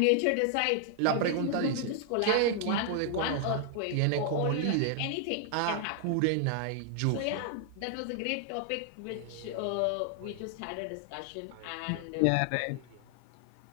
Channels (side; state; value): both; different; correlation 0.00